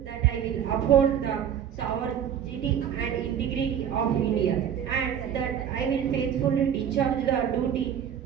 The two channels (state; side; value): quieter; left; 8.9 dB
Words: that I will uphold the sovereignty and integrity of India, and that I will faithfully discharge the duty